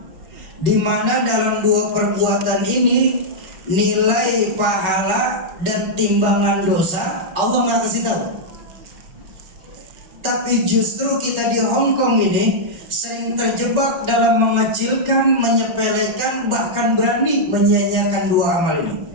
di mana dalam dua perbuatan ini nilai pahala dan timbangan dosa Allah nggak kasih tahu. Tapi justru kita di Hongkong ini sering terjebak dalam mengecilkan, menyepelekan, bahkan berani menyia-nyiakan dua amal ini.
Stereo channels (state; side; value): late; left; 6.3 ms